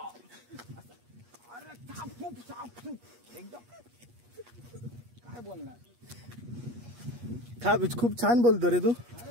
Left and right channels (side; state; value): left; late; 8.4 ms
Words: अरे साप एकदम काय बोलणार. खूप छान बोलतो रे तू.